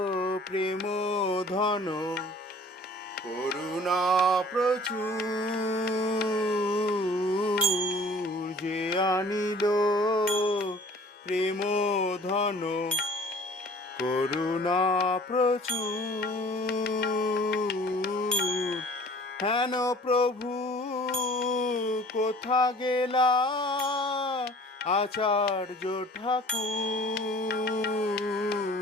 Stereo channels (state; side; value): normal; both; correlation 0.50